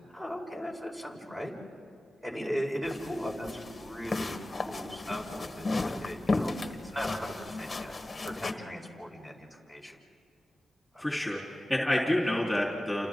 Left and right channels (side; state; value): both; normal; correlation 0.96